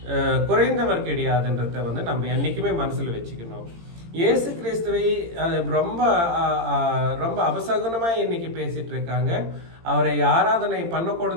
குறைந்தவர் கிடையாதுன்றத வந்து நம்ம என்னைக்குமே மனசுல வச்சுக்கணும். இயேசு கிறிஸ்துவை ரொம்ப ரொம்ப அபசகுனமா இன்னைக்கு பேசிட்டு இருக்காங்க. அவரை ஆராதனை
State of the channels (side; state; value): left; late; 18 ms